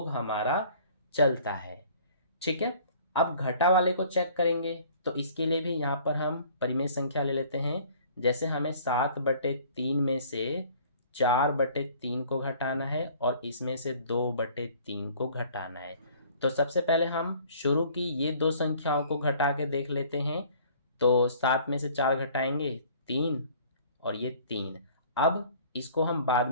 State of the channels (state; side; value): inverted; both; correlation -0.53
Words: हमारा चलता है। ठीक है, अब घटा वाले को चेक करेंगे। तो इसके लिए भी यहाँ पर हम परिमेय संख्या ले लेते हैं। जैसे हमें 7/3 में से 4/3 को घटाना है और इसमें से 2/3 को घटाना है। तो सबसे पहले हम शुरू की ये दो संख्याओं को घटा के देख लेते हैं। तो 7 में से 4 घटाएंगे 3 और ये 3। अब इसको हम बाद